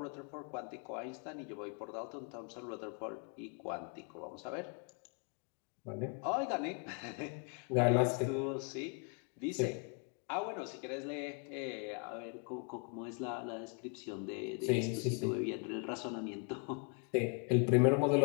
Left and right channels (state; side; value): quieter; right; 37.3 dB